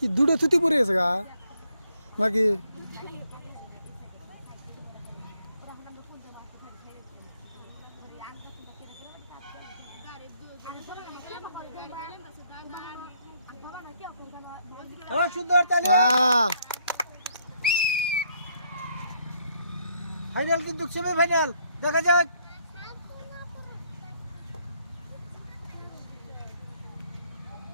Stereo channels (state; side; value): inverted; both; correlation -0.70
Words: দুটো থুতি পড়ে গেছে গা নাকি? হ্যাঁ সুন্দর, তাহলে হ্যাঁ ফাইনাল কিন্তু সেমি ফাইনাল, দেখা যাক।